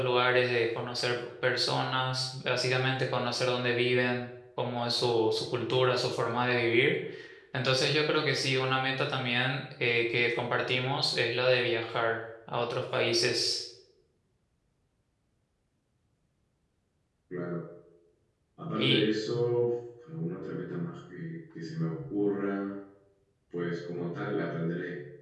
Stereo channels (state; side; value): identical; both; correlation 1.00